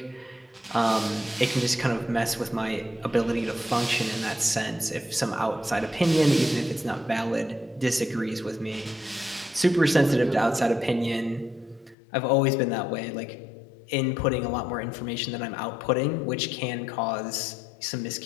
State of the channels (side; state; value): right; drops out; at 12.0 s